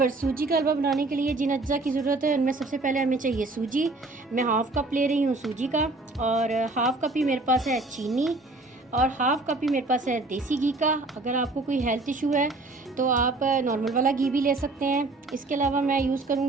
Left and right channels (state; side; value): quieter; left; 3.1 dB